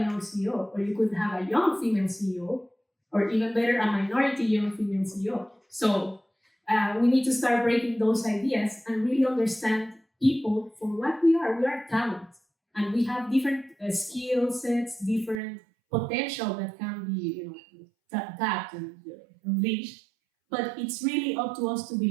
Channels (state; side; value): drops out; left; at 15.4 s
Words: young CEO, or you could have a young female CEO, or even better, a minority young female CEO. So we need to start breaking those ideas and really understand people for what we are. We are talent, and we have different skill sets, different potential that can be, tapped and unleashed. But it's really up to us to